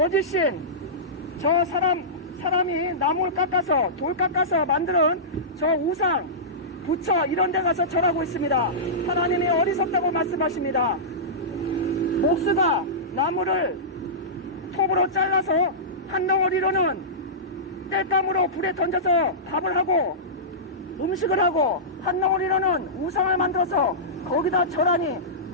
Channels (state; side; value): normal; both; correlation -0.18